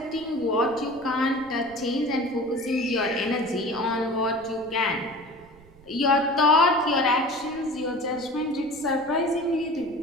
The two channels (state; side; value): noise; right; rumble, 24 dB below the sound